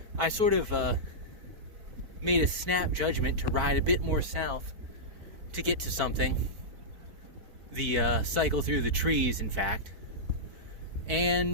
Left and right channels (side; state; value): left; late; 4.5 ms